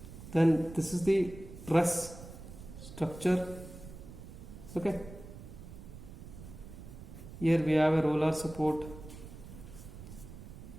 Then this is the truss structure. Okay, here we have a roller support,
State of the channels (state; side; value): noise; right; rumble, 14 dB below the sound